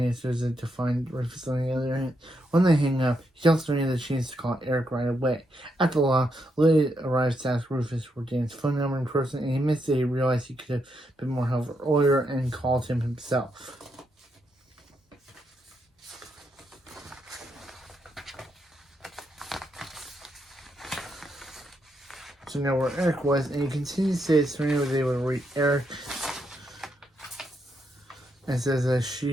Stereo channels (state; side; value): normal; both; correlation 0.80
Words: it to find Rufus on the other end. When they hang up, he tells Serena that she needs to call Eric right away. At the law, Lily arrives to ask Rufus for Dan's phone number in person, and he admits that he realized he could have been more helpful earlier and called him himself. So now where Eric was, and he continues to say that Serena was able to reach Eric and says that